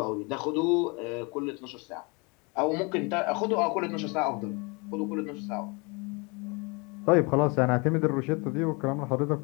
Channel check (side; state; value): right; quieter; 29.6 dB